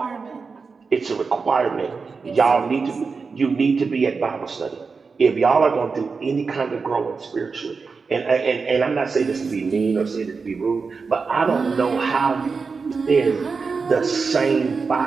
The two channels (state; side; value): quieter; left; 4.8 dB